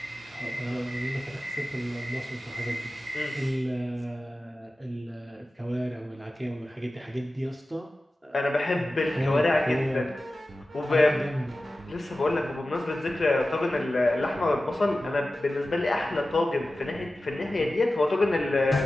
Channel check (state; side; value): normal; both; correlation 0.95